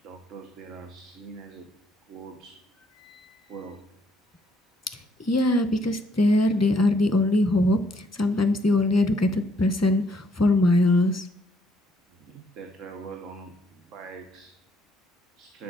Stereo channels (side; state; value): both; normal; correlation 0.69